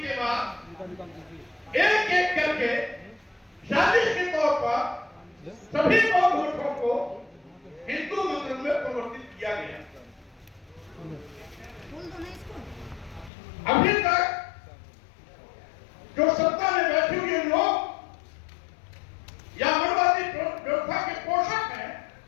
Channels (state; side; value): drops out; right; at 13.3 s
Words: के बाद एक एक करके साजिश के तौर पर सभी बौद्ध मठों को हिंदू मंदिर में परिवर्तित किया गया। अभी तक जो सत्ता में बैठे हुए लोग या मनवादी व्यवस्था के पोषक हैं,